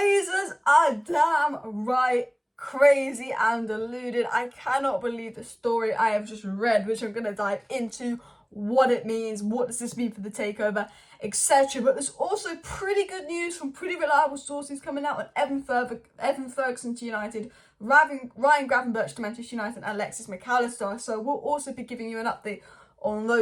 are damn right crazy and deluded. I cannot believe the story I have just read, which I'm going to dive into, what it means, what does this mean for the takeover, etc. But there's also pretty good news from pretty reliable sources coming out on Evan Ferguson to United, Ryan Gravenberch to Manchester United, and Alexis Mac Allister. So we'll also be giving you an update on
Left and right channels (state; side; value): identical; both; correlation 1.00